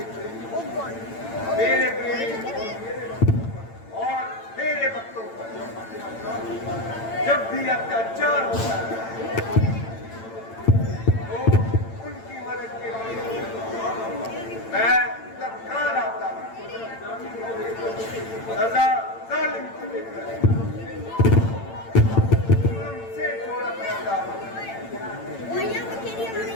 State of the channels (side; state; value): right; late; 8.9 ms